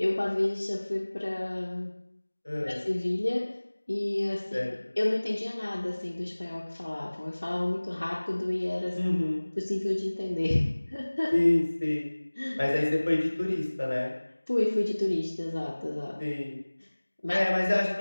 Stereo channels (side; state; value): both; inverted; correlation -1.00